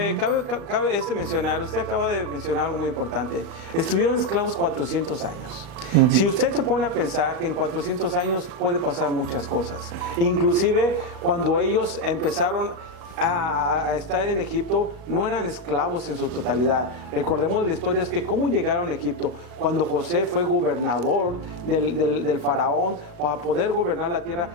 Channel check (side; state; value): left; late; 37 ms